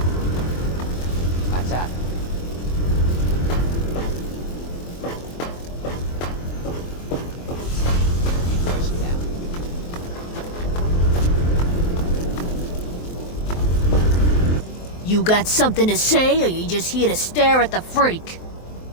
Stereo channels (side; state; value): right; late; 23 ms